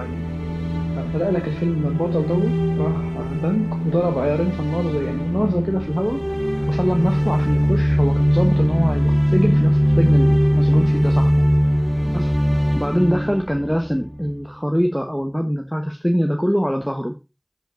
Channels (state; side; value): identical; both; correlation 1.00